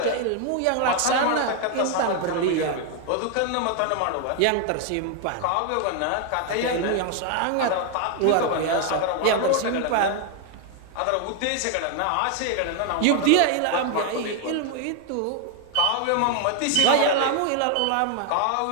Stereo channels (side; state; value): both; different; correlation 0.00